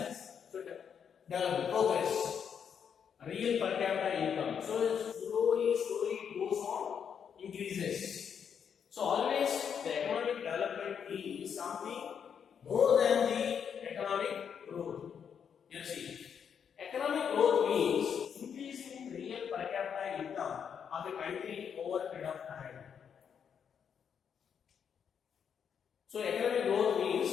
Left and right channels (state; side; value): quieter; right; 7.5 dB